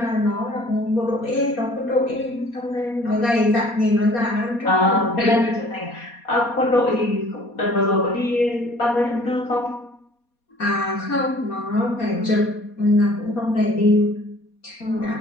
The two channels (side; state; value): right; late; 4.2 ms